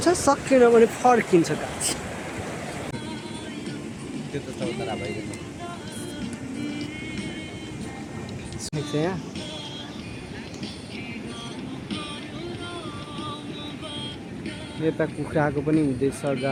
सकेन भने फर्किन्छ गाइस। त्यो त चौतारा भइरहेको यहाँ यता कुखुराको पनि हुँदैछ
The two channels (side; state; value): both; identical; correlation 1.00